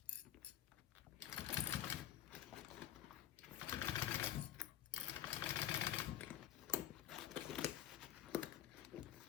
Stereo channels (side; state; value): right; quieter; 11.5 dB